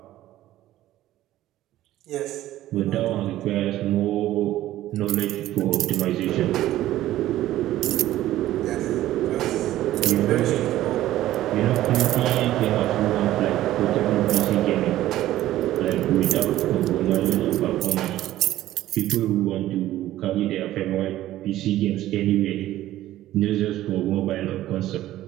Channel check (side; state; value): left; quieter; 14.3 dB